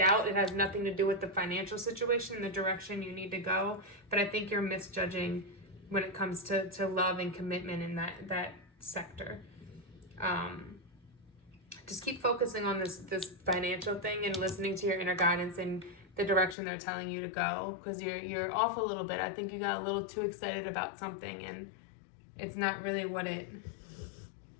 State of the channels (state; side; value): drops out; right; at 16.6 s